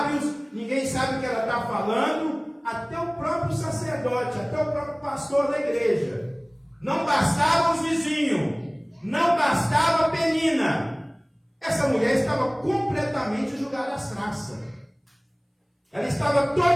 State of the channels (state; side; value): identical; both; correlation 1.00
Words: ninguém sabe o que ela está falando, até o próprio sacerdote, até o próprio pastor da igreja. Não bastava os vizinhos, não bastava a Penina. Essa mulher estava completamente jogada às traças. Ela estava